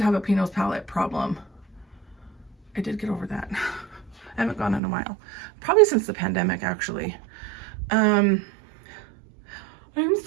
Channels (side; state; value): left; drops out; at 4.8 s